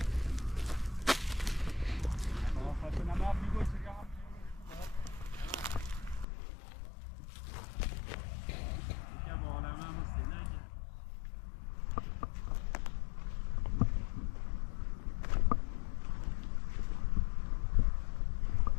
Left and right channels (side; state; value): right; drops out; at 6.2 s